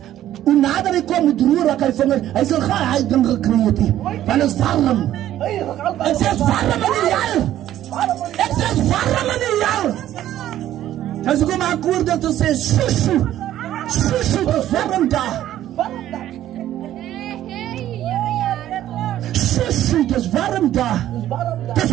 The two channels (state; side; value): quieter; left; 12.6 dB